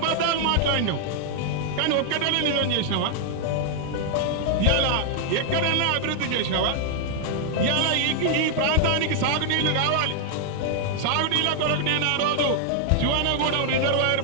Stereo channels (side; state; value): both; different; correlation 0.00